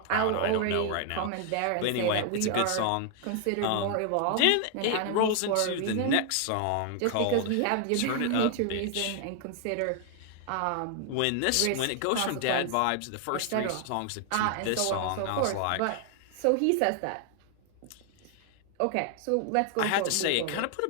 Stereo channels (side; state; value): both; different; correlation 0.00